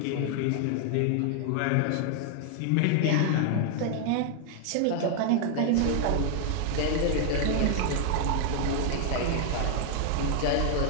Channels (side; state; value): both; different; correlation 0.00